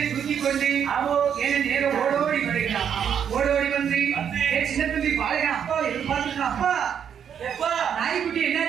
தூக்கி கொண்டு என்ன நேரம் ஓடோடி வருகிறான். ஓடோடி வந்து என் சின்ன தம்பி பாருங்க, அப்பா எதிர்பார்த்துருக்கான். அப்பா நாய்க்குட்டி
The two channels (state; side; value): quieter; left; 8.2 dB